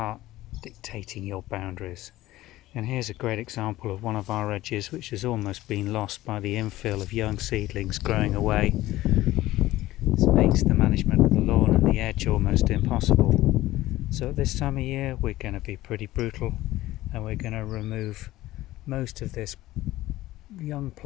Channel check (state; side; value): quieter; right; 16.4 dB